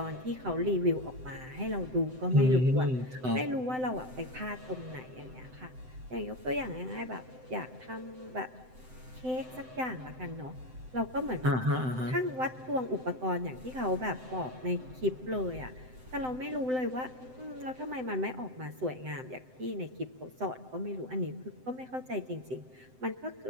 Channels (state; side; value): late; left; 7.8 ms